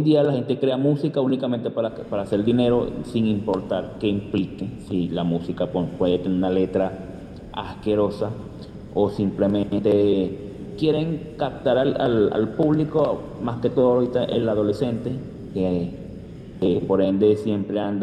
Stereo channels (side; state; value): both; identical; correlation 1.00